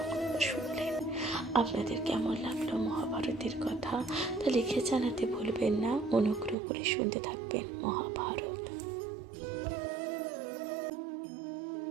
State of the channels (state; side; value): drops out; left; at 6.6 s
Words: শুনলেন। আপনাদের কেমন লাগলো মহাভারতের কথা তা লিখে জানাতে ভুলবেন না। অনুগ্রহ করে শুনতে থাকবেন মহাভারত।